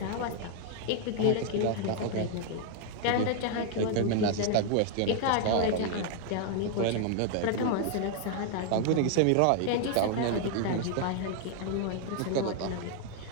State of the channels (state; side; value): different; both; correlation 0.00